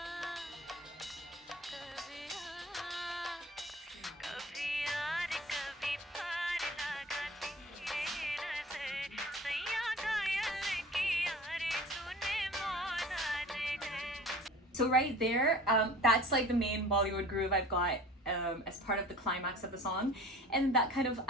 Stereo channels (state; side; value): normal; both; correlation 0.43